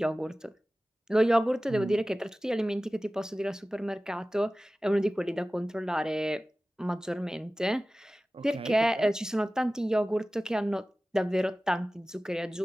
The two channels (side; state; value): both; normal; correlation 0.97